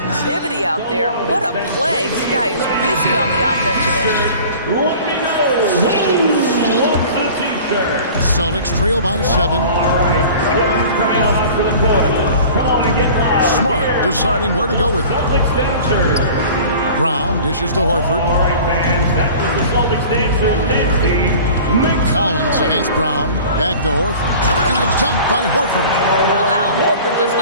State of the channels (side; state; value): both; inverted; correlation -0.43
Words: out there. What a play. This guy is busy on the offensive end. Let me know who wants a t-shirt. Celtics trail by 7. Coming out onto the court. Come on and get loud. Smart deciding where to go with it. Celtics dancers. Brown dishes to Horford. All right, fans. That was the Celtics dancers dance team. Collins against Brown. Back to Horford. And a dunk by Horford. Well, Al Horford does